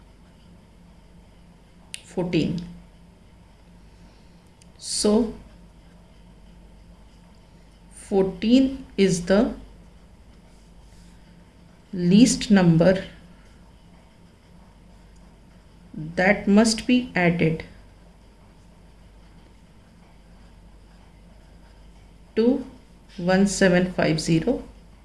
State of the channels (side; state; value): both; identical; correlation 1.00